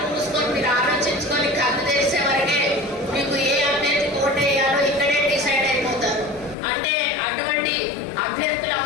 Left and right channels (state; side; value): drops out; right; at 6.6 s